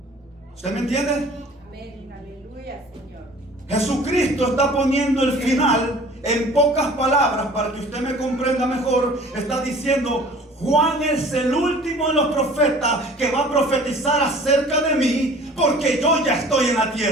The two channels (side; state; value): both; normal; correlation 0.48